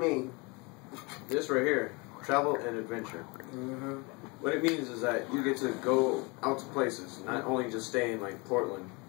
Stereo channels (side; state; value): right; quieter; 28.1 dB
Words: This right here, travel and adventure. Mm-hmm. What it means is that you get to go out to places, not only just stay in like Portland,